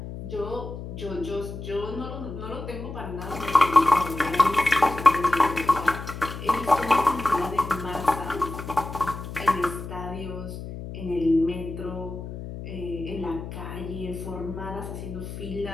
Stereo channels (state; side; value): noise; left; hum, 9 dB below the sound